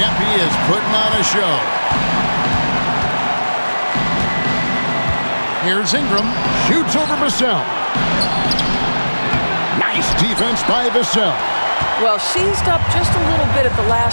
Yep, he is putting on a show. Here's Ingram. Shoots over Vassell. Nice defense by Vassell. Well, seized up just a little bit at the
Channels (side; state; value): both; inverted; correlation -1.00